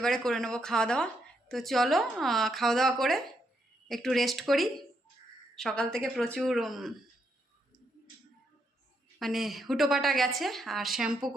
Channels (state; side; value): normal; both; correlation 0.78